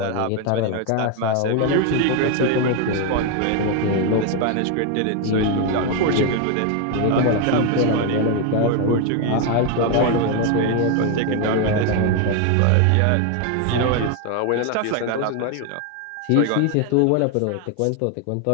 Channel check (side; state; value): both; different; correlation 0.01